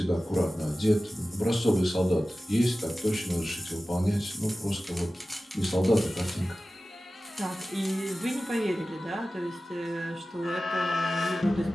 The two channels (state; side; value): normal; both; correlation 0.95